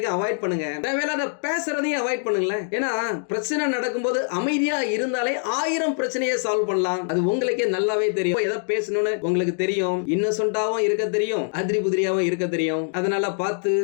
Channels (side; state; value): right; silent; digital silence